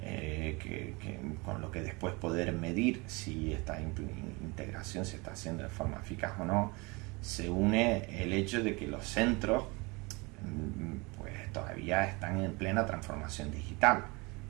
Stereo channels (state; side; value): quieter; left; 26.7 dB